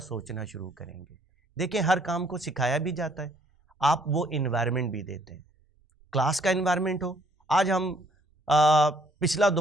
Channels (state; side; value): normal; both; correlation 0.64